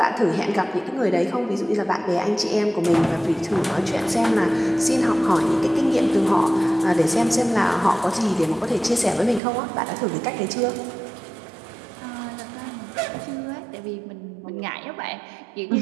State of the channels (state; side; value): drops out; left; at 9.4 s